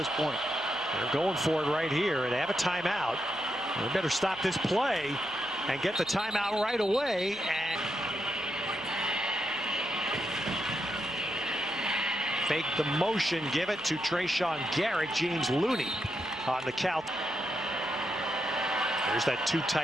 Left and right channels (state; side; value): noise; right; hum, 27 dB below the sound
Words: point. They're going for it right here, and they have a timeout. They better stop this play and get the timeout right away. And fake the motion, give it to Trayshawn Garrett. James Looney on the count. There's that two